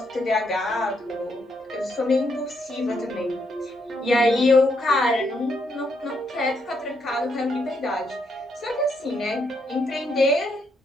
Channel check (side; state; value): both; normal; correlation 0.76